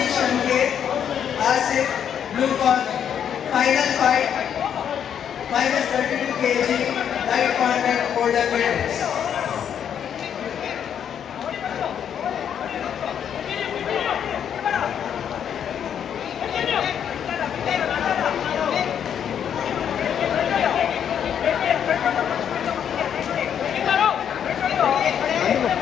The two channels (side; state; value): right; quieter; 8.7 dB